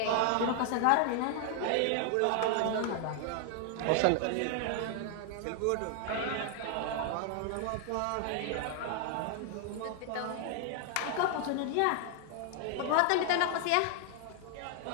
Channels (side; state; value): both; different; correlation 0.00